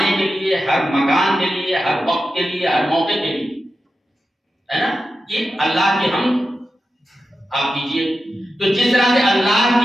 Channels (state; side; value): normal; both; correlation 0.91